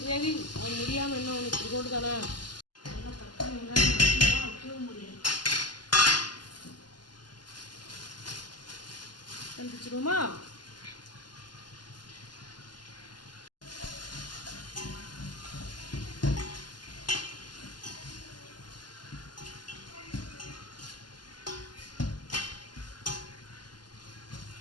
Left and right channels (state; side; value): late; right; 0.71 ms